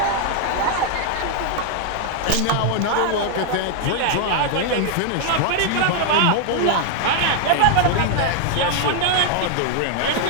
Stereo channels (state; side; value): different; both; correlation 0.00